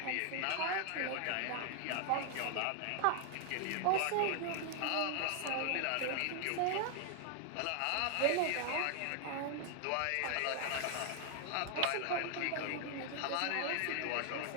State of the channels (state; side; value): different; both; correlation 0.00